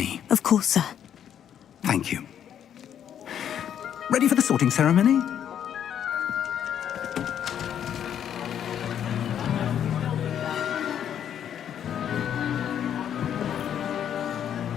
Of course, sir. Thank you. Ready for the sorting ceremony?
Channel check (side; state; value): right; quieter; 9.4 dB